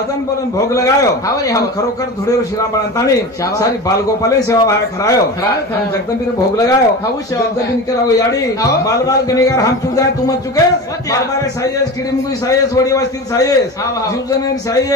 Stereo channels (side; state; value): both; normal; correlation 0.29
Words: बोलन भोग लगायो हाँ रे, हाँ। आणि खरोखर धुळेवर शिरामण ताणी शाबाश। सारी बालगोपाले सेवा भाया खरायो खरायो। आणि जगदंबीने भोग लगायो हाँ, सेवा जगदंबीने केला याडी हाँ। बाल बाल गणेगार हम तू जाय तू मत चुकेस मत या। बारबारे साईस किडीमुगी साईस वडी वस्ती साईस हाँ, हाँ। जीवजन